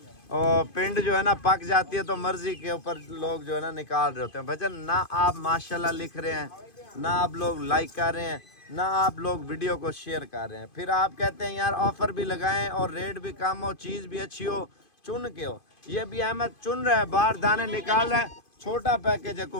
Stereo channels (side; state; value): right; late; 2.5 ms